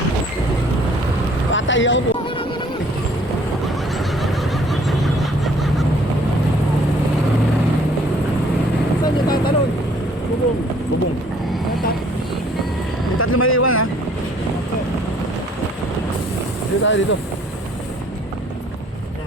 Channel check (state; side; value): normal; both; correlation 0.59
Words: Patay ako po. Saan niyo tatalon? Bubong. Bubong. Yung tatlo may iwan ha. Dito tayo dito.